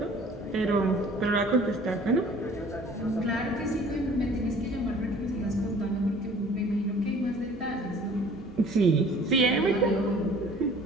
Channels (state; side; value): normal; both; correlation 0.50